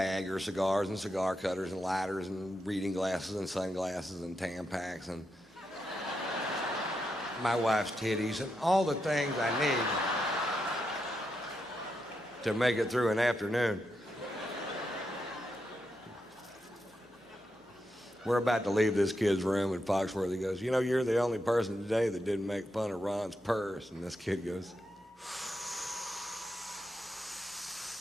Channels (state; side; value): normal; both; correlation 0.84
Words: are cigars and cigar cutters and lighters and reading glasses and sunglasses and Tampax and my wife's titties and all the things I need to make it through an afternoon. We're about to leave this kid's room, and Foxworthy goes, you know, you're the only person today that didn't make fun of Ron's purse. And this kid goes,